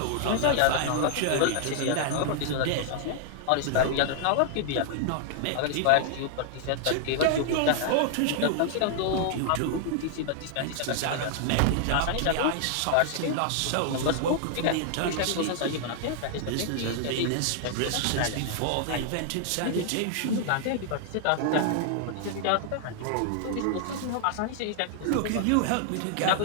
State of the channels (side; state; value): both; different; correlation 0.00